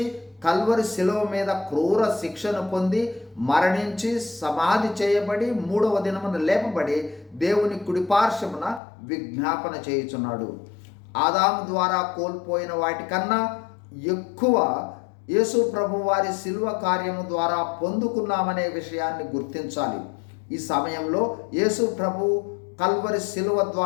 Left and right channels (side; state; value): right; drops out; at 8.8 s